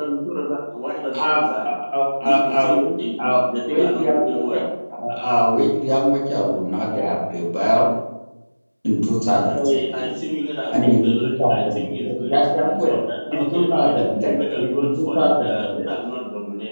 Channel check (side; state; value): both; inverted; correlation -1.00